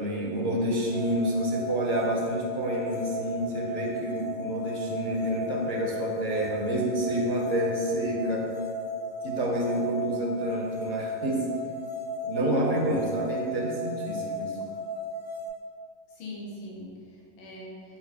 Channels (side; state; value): right; late; 11 ms